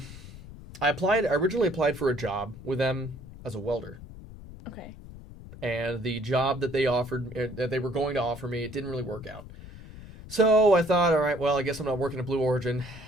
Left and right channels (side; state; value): left; noise; rumble, 15 dB below the sound